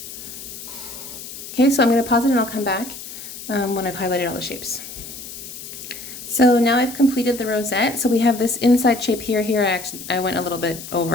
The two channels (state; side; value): noise; left; hiss, 12 dB below the sound